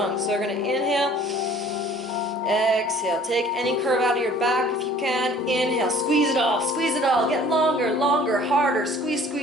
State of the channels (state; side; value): normal; both; correlation 0.52